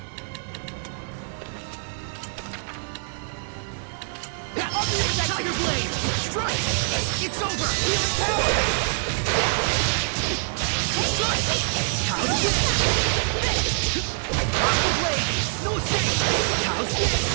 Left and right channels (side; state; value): left; silent; 56 dB below the other